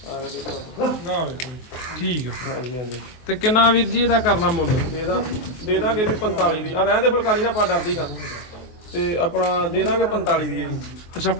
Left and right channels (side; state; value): right; late; 23 ms